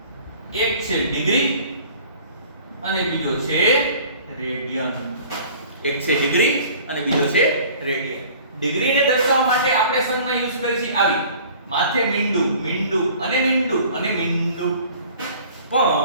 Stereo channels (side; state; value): both; inverted; correlation -0.49